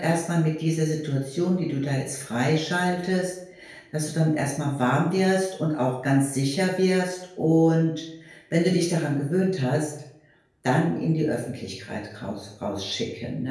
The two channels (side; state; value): both; identical; correlation 1.00